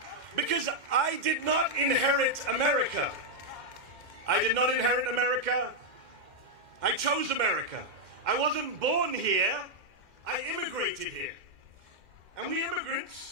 Because I did not inherit America. I did not inherit America. I chose America. I wasn't born here. I immigrated here. And we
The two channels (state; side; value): late; left; 2.1 ms